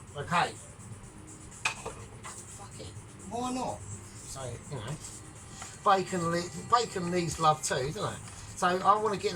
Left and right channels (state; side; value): identical; both; correlation 1.00